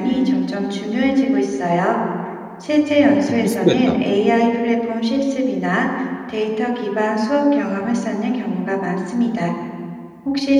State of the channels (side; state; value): both; identical; correlation 1.00